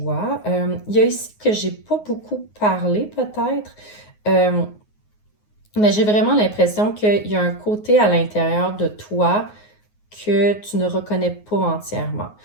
Il y a ici que j'ai pas beaucoup parlé peut-être, mais j'ai vraiment l'impression qu'il y a un côté à l'intérieur de toi que tu ne reconnais pas entièrement,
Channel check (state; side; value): late; right; 9.5 ms